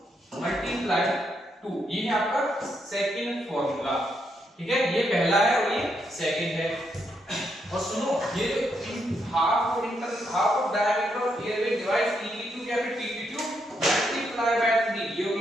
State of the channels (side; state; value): both; normal; correlation 0.78